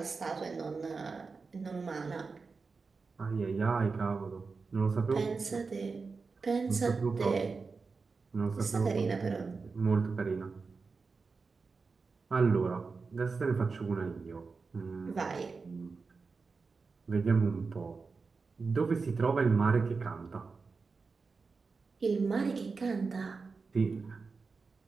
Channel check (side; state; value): left; quieter; 4.5 dB